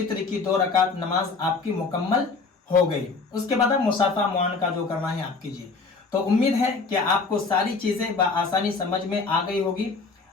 की 2 रकात नमाज आपकी मुकम्मल हो गई। उसके बाद आप मुसाफा मुआनका जो करना है आप कीजिए। तो उम्मीद है कि आपको सारी चीज़ें बआसानी समझ में आ गई होगी,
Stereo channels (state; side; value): quieter; right; 4.3 dB